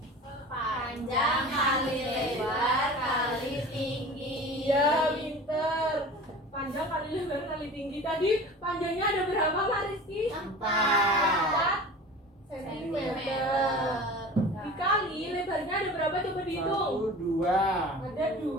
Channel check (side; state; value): both; normal; correlation 0.38